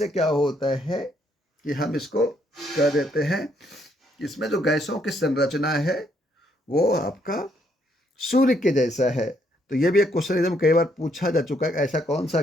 क्या होता है कि हम इसको कह देते हैं, इसमें जो गैसों की संरचना है वो आपका सूर्य के जैसा है। तो ये भी एक क्वेश्चन एकदम कई बार पूछा जा चुका है, ऐसा कौन सा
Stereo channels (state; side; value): normal; both; correlation 0.72